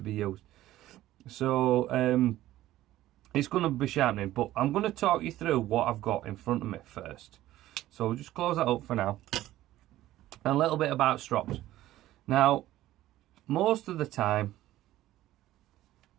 be used. So it's going to be sharpening, but I'm going to talk you through what I've got in front of me first. So we'll just close that up for now. And a little bit about strops. Now, most of the time,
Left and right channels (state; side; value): quieter; left; 14.8 dB